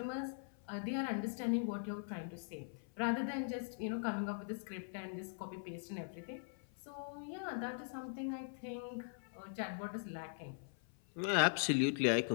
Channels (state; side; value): silent; right; 50 dB below the other